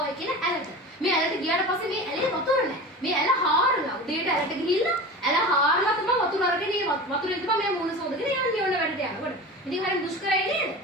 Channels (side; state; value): both; normal; correlation 0.32